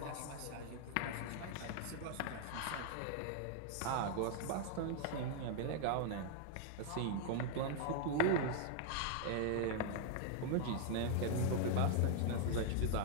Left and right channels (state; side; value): different; both; correlation -0.01